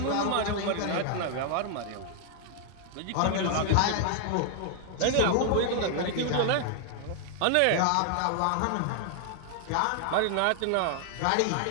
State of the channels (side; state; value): both; different; correlation 0.00